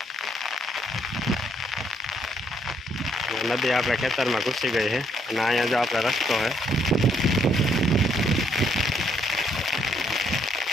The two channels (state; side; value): normal; both; correlation 0.70